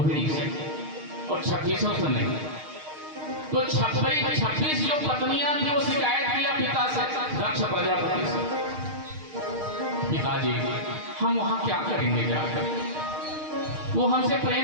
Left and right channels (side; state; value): left; late; 6.5 ms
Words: से, और 26 से नहीं। तो 26 जो पत्नियां थी वो शिकायत किया पिता से, दक्ष प्रजापति से, पिताजी हम वहां क्या करेंगे जाकर? वो हमसे